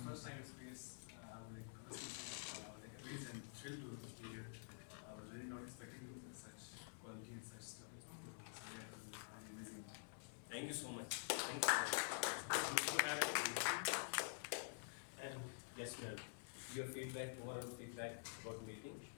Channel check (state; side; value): silent; right; digital silence